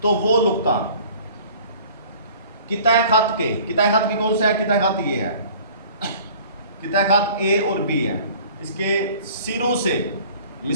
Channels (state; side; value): inverted; both; correlation -0.49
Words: तो वो नुक्ता कितने खत के, कितने खत की कौन सा है, कितने खत ये है, कितने खत ए और बी है, इसके सिरों से